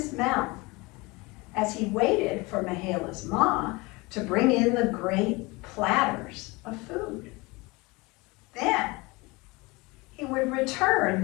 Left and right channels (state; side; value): quieter; right; 24.5 dB